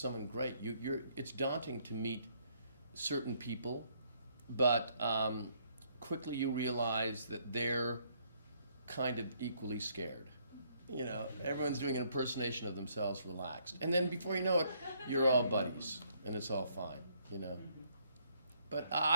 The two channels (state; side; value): inverted; both; correlation -0.68